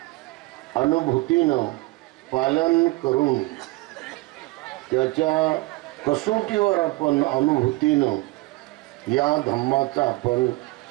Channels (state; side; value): quieter; left; 21.3 dB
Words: अनुभूतीनं पालन करून त्याच्या कसोटीवर आपण अनुभूतीनं या धम्माचा आपण